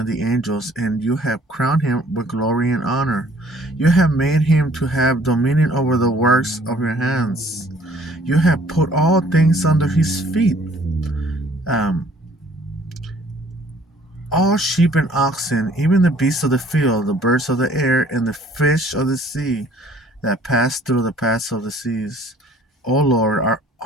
the angels, and you have crowned him with glory and honor. You have made him to have dominion over the works of your hands. You have put all things under his feet, um, all sheep and oxen, even the beasts of the field, the birds of the air, and the fish of the sea that pass through the paths of the seas. O Lord,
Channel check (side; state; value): both; normal; correlation 0.57